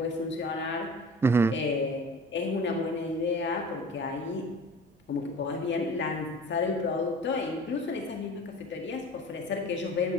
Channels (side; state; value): both; normal; correlation 0.41